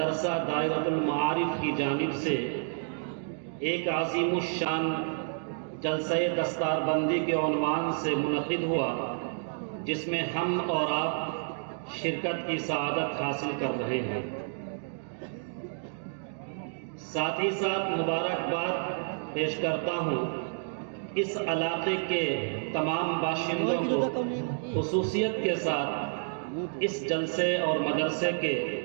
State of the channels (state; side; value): silent; left; digital silence